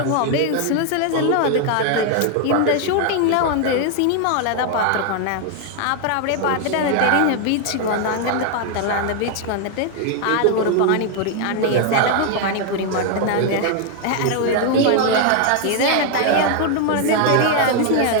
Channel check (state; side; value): different; both; correlation 0.00